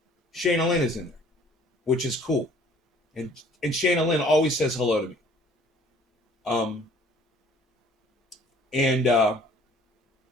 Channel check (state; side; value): normal; both; correlation 0.55